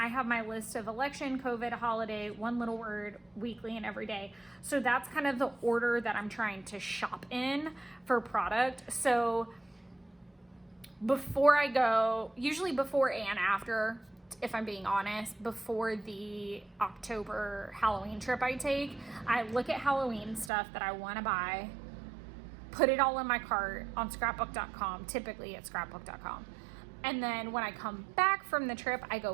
have my list of election, COVID, holiday, one little word, weekly, and every day. So that's kind of the order that I'm trying to shop in for product. So before I go, usually before and after, if I'm being honest, before the October Halloween trip I take, I look at Halloween stuff that I want to buy, put it all in my cart on scrapbook.com, typically at scrapbook.com. And then when I come back from the trip, I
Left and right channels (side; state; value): left; drops out; at 20.5 s